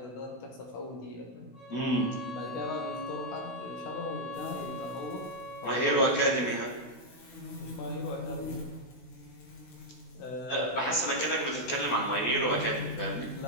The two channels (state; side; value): late; right; 16 ms